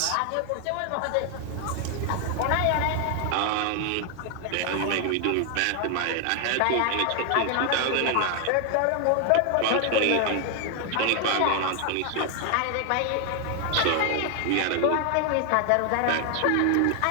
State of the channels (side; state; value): both; different; correlation 0.00